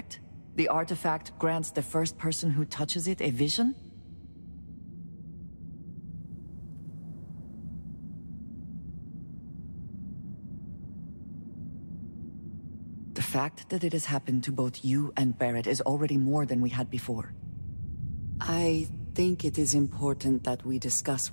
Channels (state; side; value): inverted; both; correlation -1.00